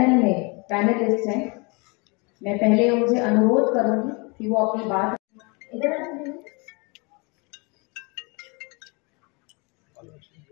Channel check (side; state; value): right; quieter; 29.9 dB